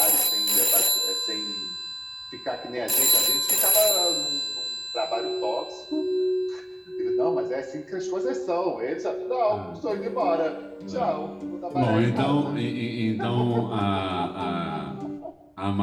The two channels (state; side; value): identical; both; correlation 1.00